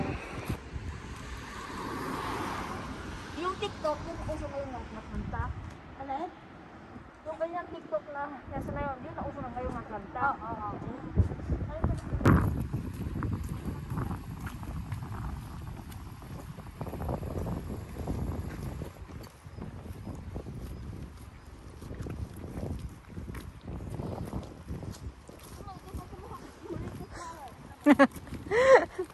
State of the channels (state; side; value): identical; both; correlation 1.00